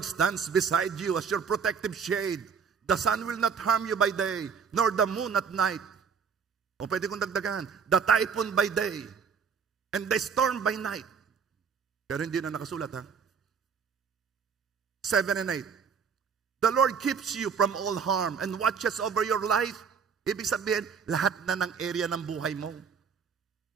stands beside you as your protective shade. The sun will not harm you by day, nor the moon at night. O pwede kong dagdagan, the typhoon by day, and the storm by night. Pero hindi na nakasulat, 7 and 8. The Lord keeps you from all harm and watches over your life. Ibig sabihin, lahat na ng area ng buhay mo.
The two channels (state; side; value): quieter; left; 6.4 dB